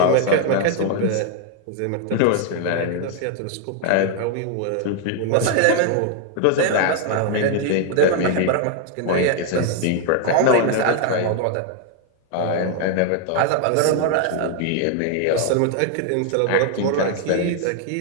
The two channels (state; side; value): different; both; correlation 0.00